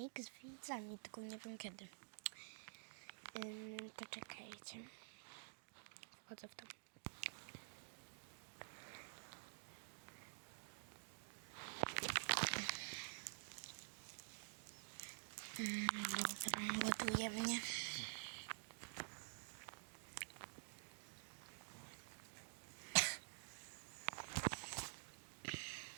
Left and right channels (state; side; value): silent; left; digital silence